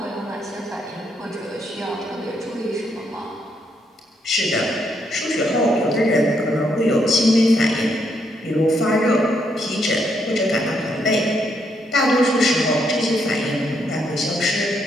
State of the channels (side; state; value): both; normal; correlation 0.75